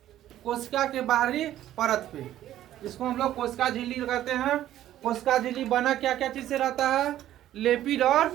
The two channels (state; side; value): quieter; left; 12.8 dB